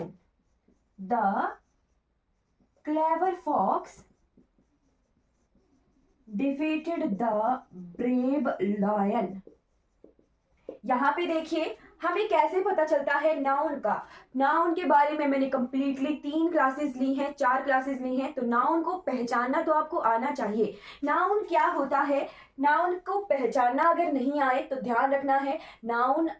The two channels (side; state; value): both; identical; correlation 1.00